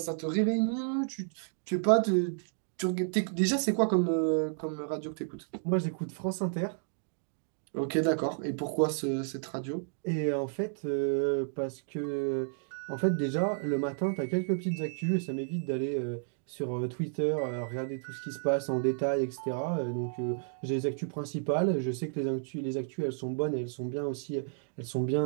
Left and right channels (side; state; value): left; silent; digital silence